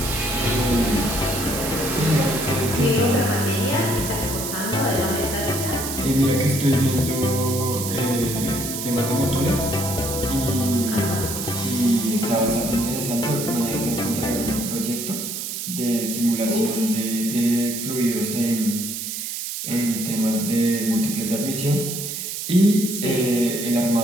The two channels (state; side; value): noise; right; hiss, 5 dB below the sound